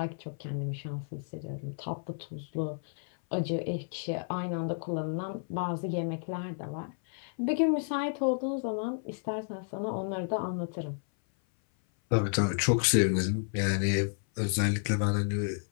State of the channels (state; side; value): silent; right; 57 dB below the other